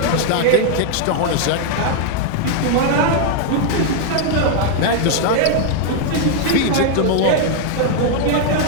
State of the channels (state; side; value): different; both; correlation 0.00